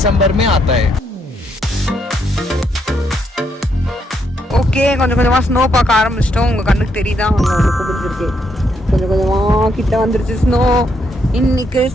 में आता है. ஓகே, கொஞ்சம் கொஞ்சமா ஸ்னோ பார்க்க ஆரம்பிச்சிட்டோம். உங்க கண்ணுக்கு தெரியுதா? உங்களுக்கு பிடிச்சிருக்கு. கொஞ்சம் கொஞ்சமா கிட்ட வந்துருச்சு ஸ்னோ. இன்னைக்கு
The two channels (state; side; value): normal; both; correlation 0.76